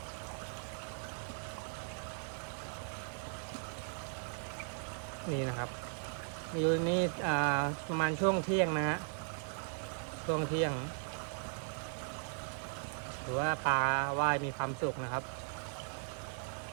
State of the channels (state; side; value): silent; left; 53 dB below the other